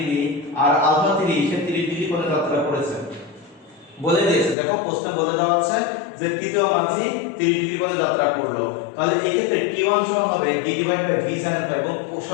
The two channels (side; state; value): right; drops out; at 4.5 s